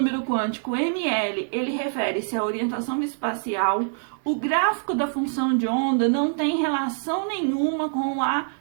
quântico, ml, ele refere-se à orientação espacial. O gráfico da função de onda não tem relação nenhuma com a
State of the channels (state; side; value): silent; left; digital silence